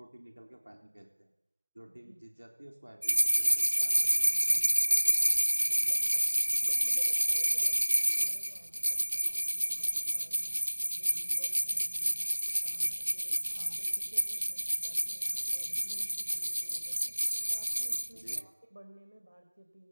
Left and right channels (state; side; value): inverted; both; correlation -1.00